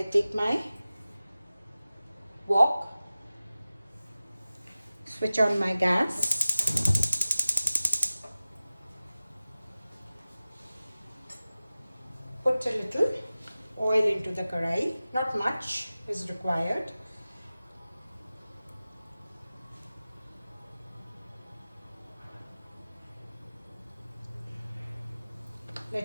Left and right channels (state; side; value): inverted; both; correlation -0.97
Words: take my wok, switch on my gas, put a little oil into the karai, not much is required.